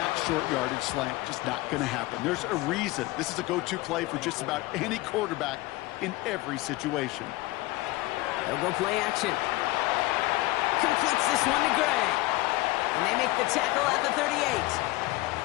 short yardage slant. Just not going to happen. There's a reason. This is a go-to play for just about any quarterback in every situation. They'll go play action. Completes this one to Gray. And they make the tackle at the 38.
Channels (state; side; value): quieter; right; 19.8 dB